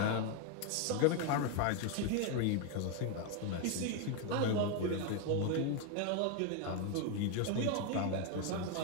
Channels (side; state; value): both; different; correlation 0.01